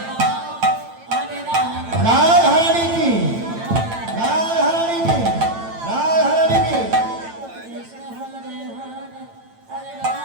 রাধারানী কি, রাধারানী কি, রাধারানী কি।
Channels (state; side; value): late; left; 8.9 ms